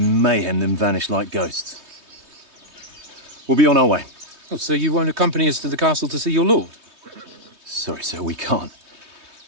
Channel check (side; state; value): left; late; 3.2 ms